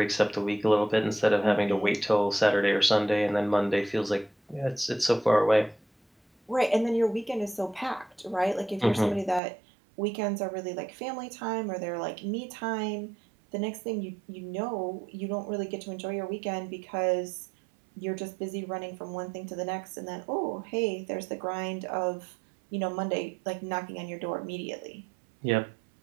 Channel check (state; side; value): drops out; left; at 9.4 s